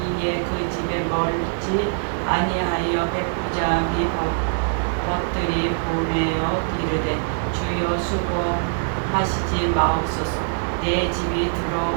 그 집에 멀지 아니하여 백부장이 벗들이 보내어 이르되 주여 수고하시지 마옵소서. 내 집이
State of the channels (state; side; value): silent; left; digital silence